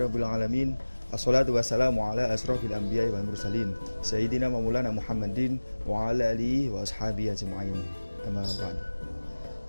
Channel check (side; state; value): both; inverted; correlation -1.00